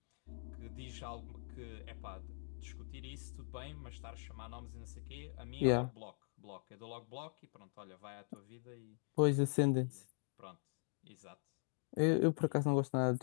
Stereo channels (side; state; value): right; silent; digital silence